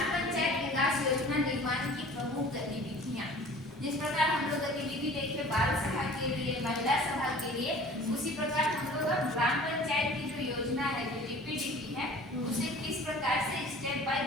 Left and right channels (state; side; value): normal; both; correlation 0.46